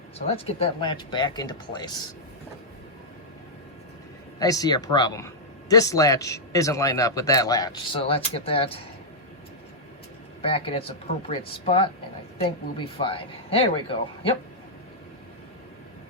So let's get that latch back into place. I see a problem. This latch isn't lined up with that latch, so let's get that back in its appropriate spot, and I think we'll be fine. There we go. Yep.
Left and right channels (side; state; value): both; normal; correlation -0.07